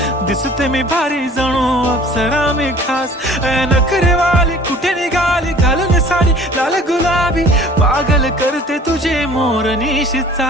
दिसते मी भारी जणू अप्सरा मी खास. नखरेवाली कुठे निघाली घालून साडी लाल गुलाबी, पागल करते तुझे मोरनीशी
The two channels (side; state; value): both; normal; correlation 0.49